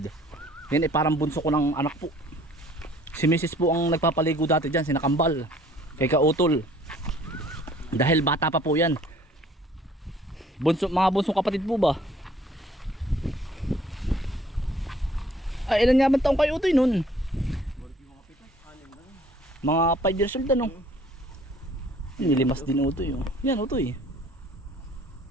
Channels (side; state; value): both; normal; correlation 0.57